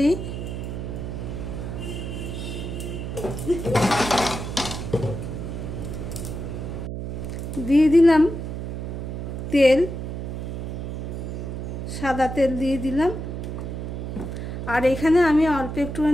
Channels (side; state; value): right; noise; hum, 5 dB below the sound